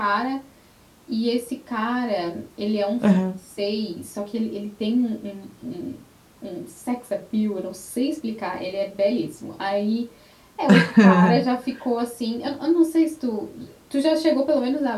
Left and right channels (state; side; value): identical; both; correlation 1.00